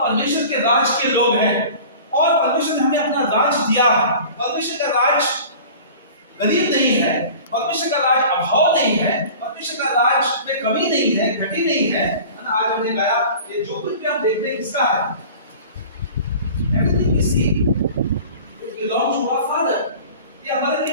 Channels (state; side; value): inverted; both; correlation -0.41